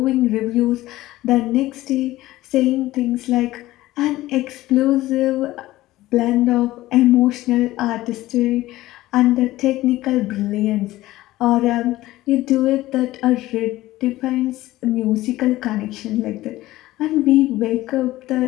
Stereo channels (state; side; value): quieter; right; 16.7 dB